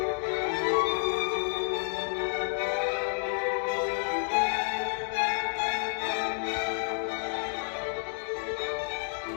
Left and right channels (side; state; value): right; silent; 56 dB below the other